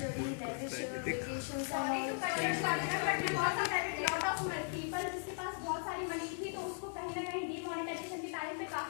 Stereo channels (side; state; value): right; silent; 53 dB below the other